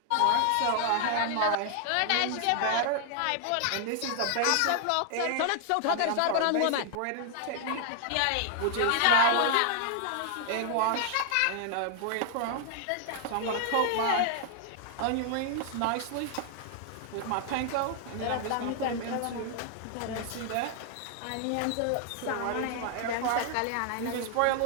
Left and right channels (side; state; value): both; different; correlation 0.00